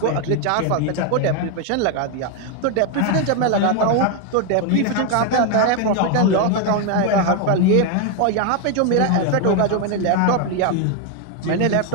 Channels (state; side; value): different; both; correlation 0.01